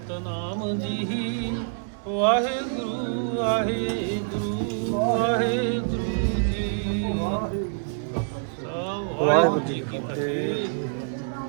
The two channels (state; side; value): silent; left; digital silence